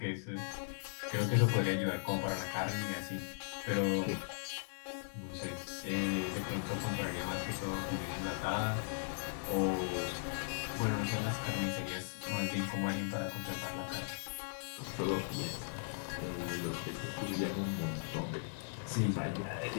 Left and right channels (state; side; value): silent; right; digital silence